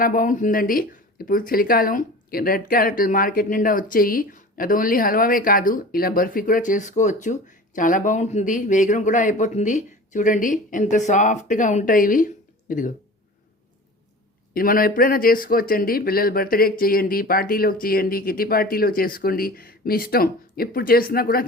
బాగుంటుందండి. ఇప్పుడు చలికాలం రెడ్ క్యారెట్లు మార్కెట్ నిండా వచ్చేయి. అది ఓన్లీ హల్వావే కాదు, ఇలా బర్ఫీ కూడా చేసుకోవచ్చు. చాలా బాగుంటుంది. వేగరం కూడా అయిపోతుంది. చూడండి ఎంత సాఫ్ట్గా ఉంటాయి ఇవి. ఇదిగో, ఇది మనం ఎప్పుడైనా చేసుకోవచ్చండి. పిల్లల బర్త్డేకి చేయండి, పార్టీలోకి చేయండి, కిటీ పార్టీలో చేసుకోండి, మీ ఇష్టం. ఎప్పుడు చేసినా కూడా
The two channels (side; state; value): both; normal; correlation 0.38